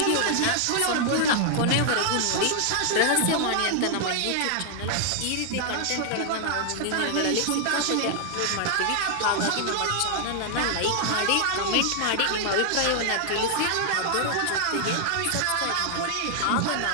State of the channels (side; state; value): both; different; correlation 0.00